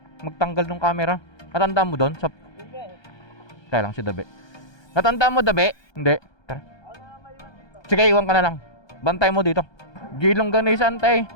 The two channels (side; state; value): right; late; 1.2 ms